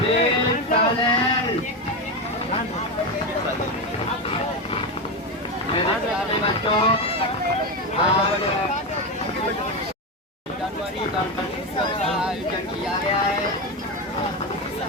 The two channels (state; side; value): normal; both; correlation 0.14